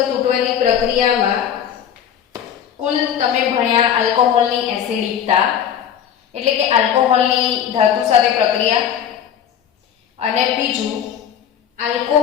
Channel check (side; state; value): right; quieter; 9.2 dB